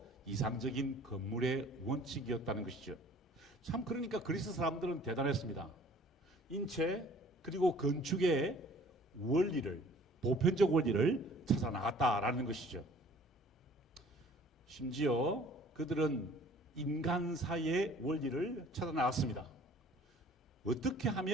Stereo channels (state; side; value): normal; both; correlation 0.52